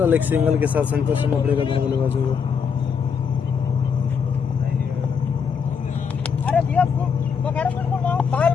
एक सिंगल के साथ संतोष करना पड़ेगा दोनों बल्लेबाजों को। अरे भैया बगैर बिल्कुल बाहर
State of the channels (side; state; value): right; quieter; 6.4 dB